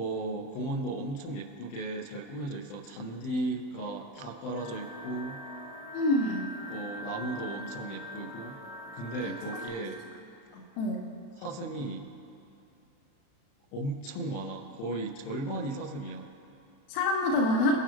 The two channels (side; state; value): right; late; 35 ms